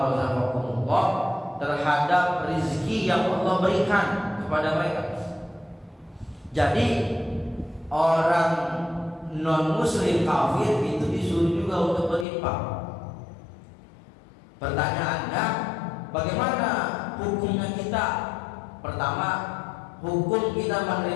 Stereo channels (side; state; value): right; drops out; at 12.2 s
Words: razaqakumullah terhadap rezeki yang Allah berikan kepada mereka. Jadi orang non muslim kafir itu disuruh juga untuk berinfak. Pertanyaannya, bagaimana hukumnya kita? Pertama, hukum kita